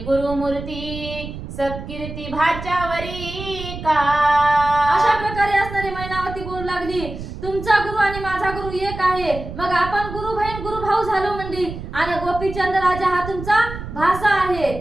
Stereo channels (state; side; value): noise; right; rumble, 10 dB below the sound